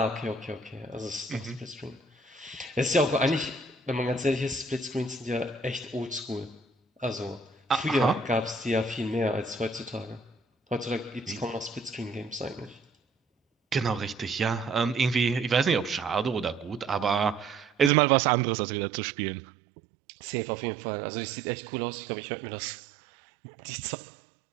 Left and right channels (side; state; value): left; drops out; at 17.9 s